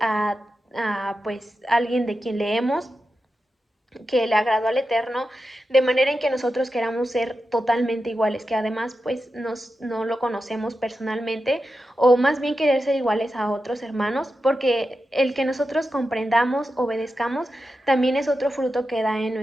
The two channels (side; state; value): both; normal; correlation 0.90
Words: pues alguien de quien leemos, que le agradó al Eterno, de manera en que nosotros queramos ser totalmente iguales, que además pues no lo conocemos personalmente, o más bien querer ser iguales a otros hermanos, porque el que nosotros comprendamos, obedezcamos, también es otro fruto que da en